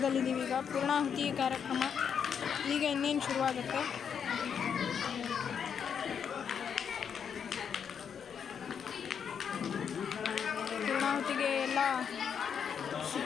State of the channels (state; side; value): quieter; right; 7.4 dB